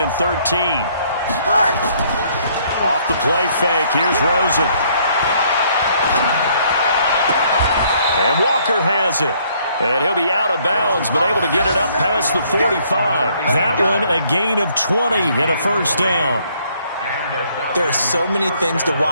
and 13. Off the play fake. Here's Rosen. And Walker has it. And he'll be out of bounds, but able to get it up past the 45. That one a gain of 20 and a first down. There are so many things to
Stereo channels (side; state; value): both; inverted; correlation -0.65